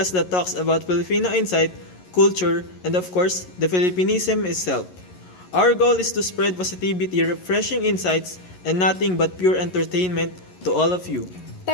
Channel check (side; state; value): right; late; 11 ms